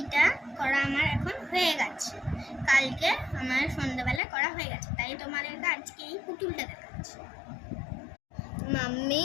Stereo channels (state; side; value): drops out; right; at 4.2 s